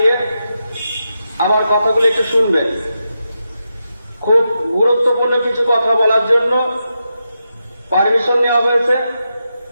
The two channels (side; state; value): both; inverted; correlation -0.87